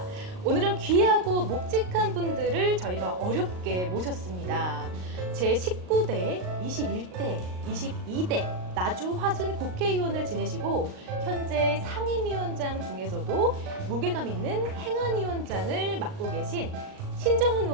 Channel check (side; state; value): left; late; 38 ms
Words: 오늘은 귀하고 묵직한 분들을 저희가 어렵게 모셨습니다. 제19대, 21대, 22대 나주 화순 국회의원을 지내시고 현재 상임위원장 중에서도 무게감 있는 행안위원장을 맡고 계신 신정훈